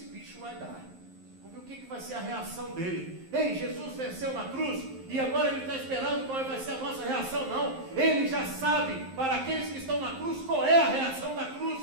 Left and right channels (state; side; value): late; left; 11 ms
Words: bicho vai dar. Vamos ver o que vai ser a reação dele. Ei, Jesus venceu na cruz e agora ele está esperando qual vai ser a nossa reação. Não, ele já sabe, para aqueles que estão na cruz, qual é a reação da